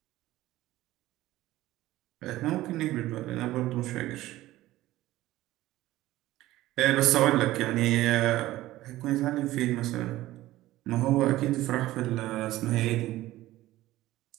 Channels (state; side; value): quieter; left; 16.1 dB